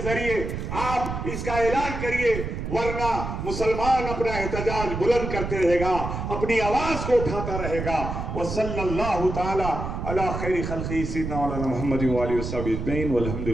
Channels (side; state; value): right; noise; rumble, 5 dB below the sound